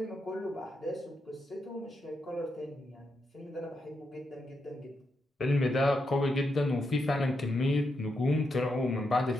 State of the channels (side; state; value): both; normal; correlation 0.83